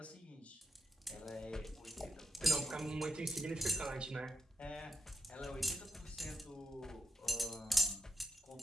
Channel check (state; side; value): normal; both; correlation 0.84